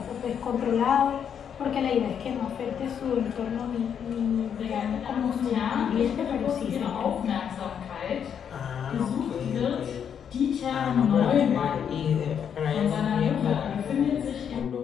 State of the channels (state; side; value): quieter; right; 8.1 dB